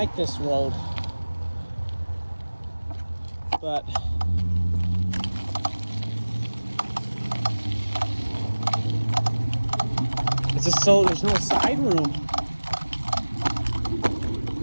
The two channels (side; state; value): both; inverted; correlation -1.00